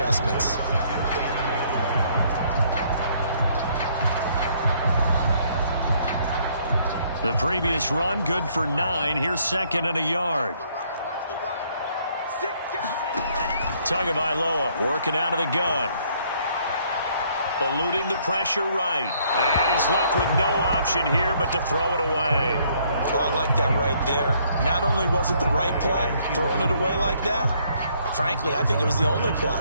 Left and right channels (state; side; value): inverted; both; correlation -0.66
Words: The previous run, good for 9. Here's second and a yard. Tagovailoa working out of the gun. Eluding the pressure right. And he's left with no option here but to throw it away. Oh, I like that right there. Not only was it the right play, throwing it away like that, frankly, I think it was the only play.